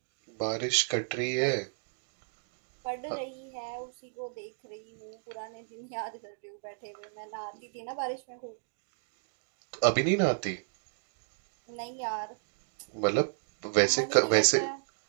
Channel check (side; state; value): left; silent; digital silence